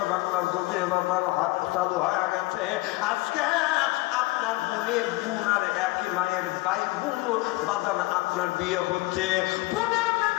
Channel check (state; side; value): quieter; right; 21.4 dB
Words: বাংলার জমি বাজার হাত চালু হয়ে গেছে। আজকে আপনার বোনের বোন আর একই মায়ের ভাই বোন বাজান আপনার বিয়ে হচ্ছে। বোনের